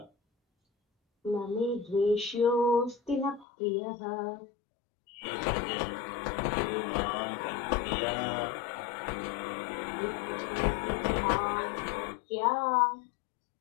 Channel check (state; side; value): drops out; right; at 3.5 s